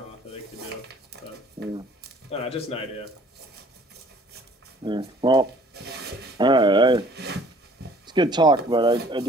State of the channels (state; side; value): normal; both; correlation 0.55